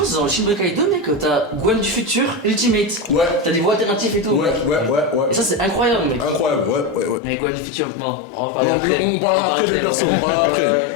que dans le Shin Budokai 2, mec, t'as Gwen du futur, Ultimate. Ouais. T'as des voix alternatives et tout. Ouais. Et ça c'est incroyable, mec. Incroyable, ouais. Mais Gwen du futur, bon, on va parler On après. parlera après, ouais. on parlera après.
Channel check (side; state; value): right; drops out; at 7.2 s